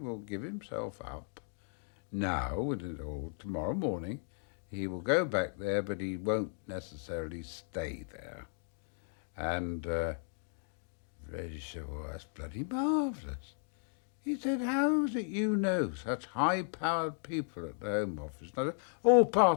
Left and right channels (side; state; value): right; silent; 54 dB below the other